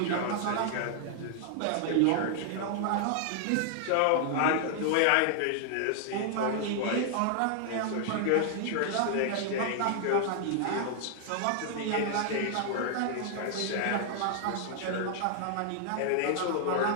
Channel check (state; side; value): different; both; correlation 0.00